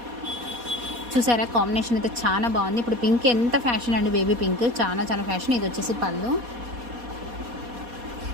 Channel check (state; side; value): late; left; 4.2 ms